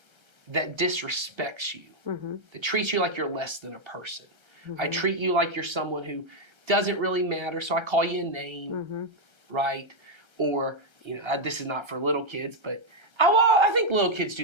that disrespects you, that treats you like you're less than a person, I treat you like you're someone who doesn't really matter, so I call you a name, right? Or, you know, this is not for little kids, but I think little kids do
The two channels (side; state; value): left; late; 1.3 ms